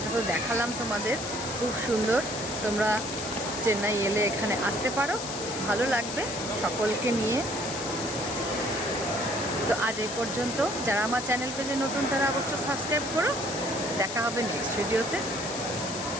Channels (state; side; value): noise; left; hiss, 7 dB below the sound